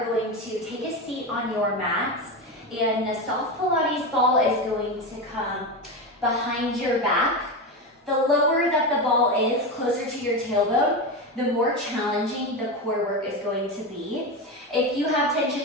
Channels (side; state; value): both; normal; correlation 0.18